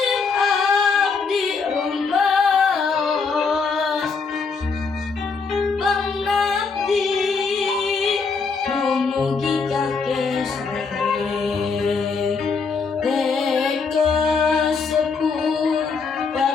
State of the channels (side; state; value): right; quieter; 4.9 dB